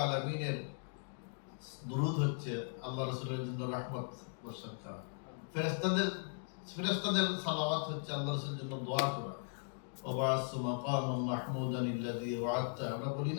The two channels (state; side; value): silent; right; digital silence